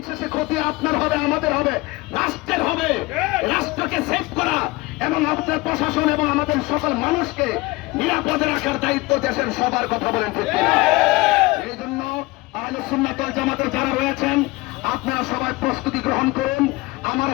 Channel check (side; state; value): right; quieter; 22.0 dB